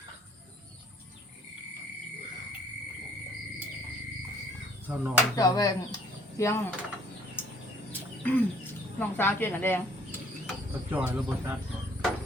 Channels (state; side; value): normal; both; correlation 0.59